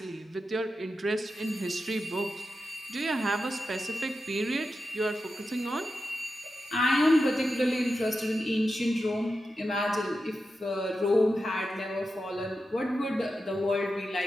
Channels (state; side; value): normal; both; correlation 0.90